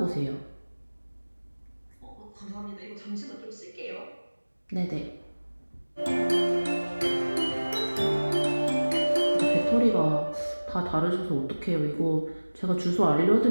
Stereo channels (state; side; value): inverted; both; correlation -1.00